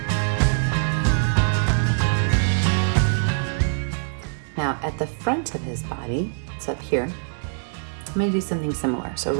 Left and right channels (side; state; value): left; silent; digital silence